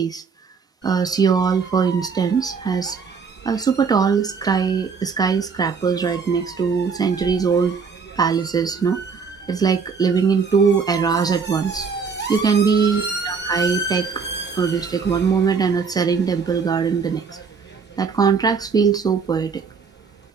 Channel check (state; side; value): quieter; left; 5.5 dB